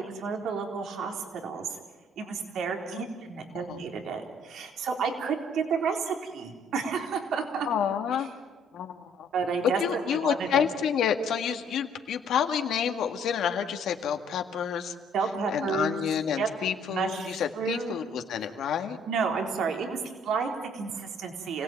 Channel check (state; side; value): normal; both; correlation 0.61